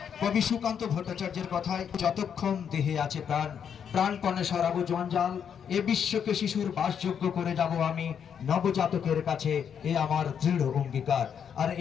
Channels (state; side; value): quieter; right; 7.8 dB